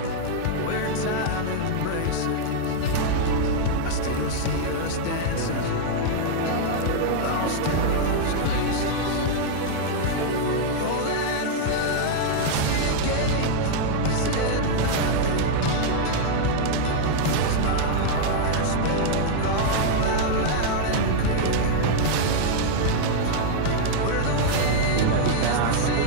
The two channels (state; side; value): different; both; correlation -0.01